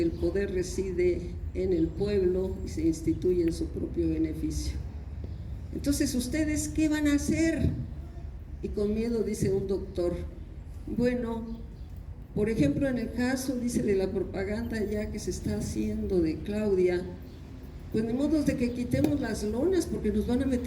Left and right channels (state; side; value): identical; both; correlation 1.00